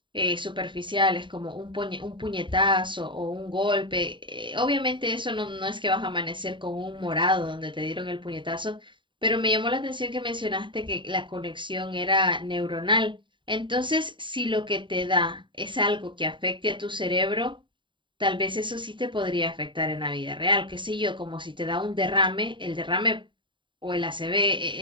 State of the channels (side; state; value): left; late; 0.23 ms